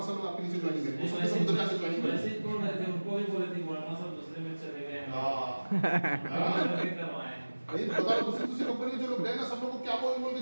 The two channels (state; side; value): inverted; both; correlation -1.00